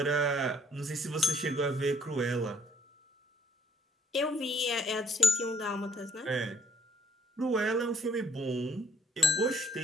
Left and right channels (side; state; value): both; normal; correlation 0.63